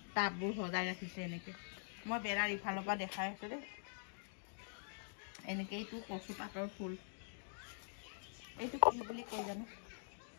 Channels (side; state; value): right; silent; digital silence